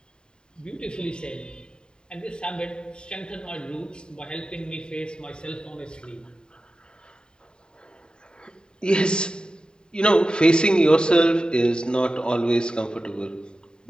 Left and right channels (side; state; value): right; late; 0.048 ms